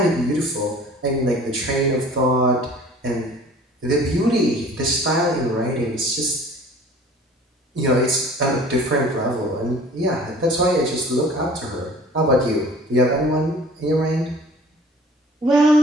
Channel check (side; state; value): both; normal; correlation 0.48